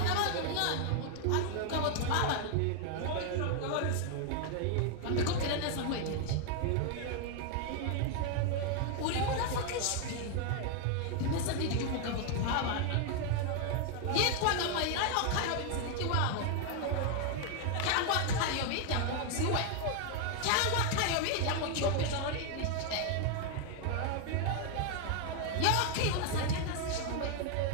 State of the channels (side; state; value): both; different; correlation 0.00